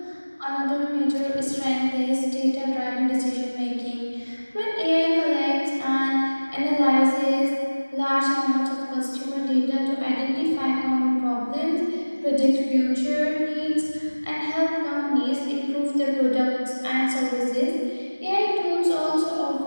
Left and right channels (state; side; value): inverted; both; correlation -1.00